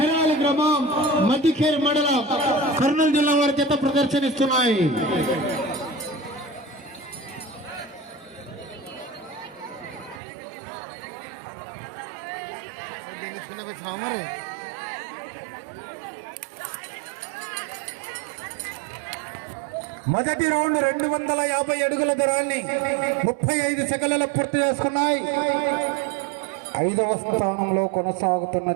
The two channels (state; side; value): drops out; left; at 10.2 s